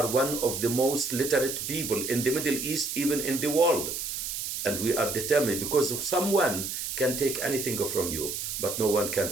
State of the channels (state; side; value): noise; right; hiss, 4 dB below the sound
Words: one of the most literate people in the Middle East, even in the world. And we are determined, because someone can take anything from you, but no one can